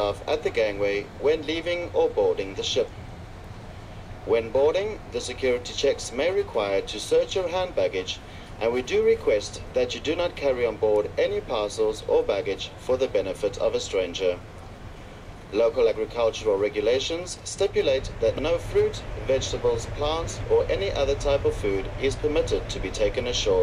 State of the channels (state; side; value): identical; both; correlation 1.00